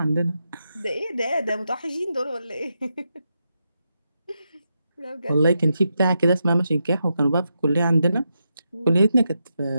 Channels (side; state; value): both; inverted; correlation -0.85